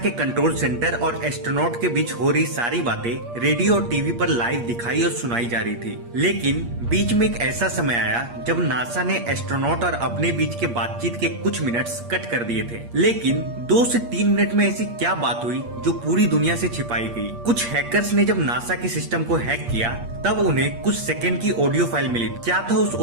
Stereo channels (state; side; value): late; left; 8.5 ms